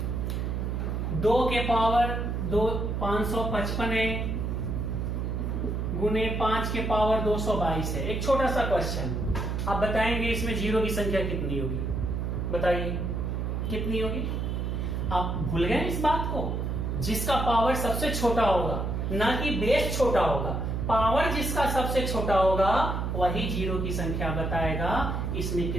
दो के पावर 555 है गुने 5 के पावर 222 है। एक छोटा सा क्वेश्चन, आप बताएंगे इसमें जीरो की संख्या कितनी होगी? बताइए कितनी होगी? आप भूल गए इस बात को? जिसका पावर सबसे छोटा होगा, ना कि बेस छोटा होगा, पावर जिसका सबसे छोटा होगा वही जीरो की संख्या बताएगा। इसमें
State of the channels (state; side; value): noise; right; hum, 1 dB below the sound